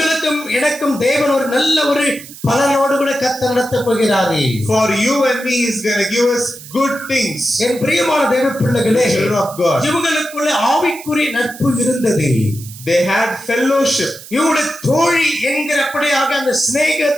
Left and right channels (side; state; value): right; noise; hiss, 16 dB below the sound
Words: எனக்கும் தேவன் ஒரு நல்ல ஒரு பலனோடு கூட கர்த்தர் நடத்த போகிறார்கள். For you and me, He is going to give us good things. என் பிரியமான தேவ பிள்ளைகளே, The children of God. இவங்களுக்குள்ள ஆவிக்குரிய நட்பு இருந்தது. They had fellowship. இவருடைய தோழி என்கிறபடியாக அந்த